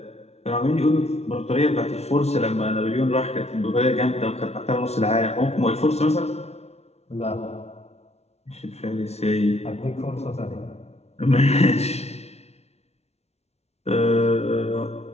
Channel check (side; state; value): right; late; 0.31 ms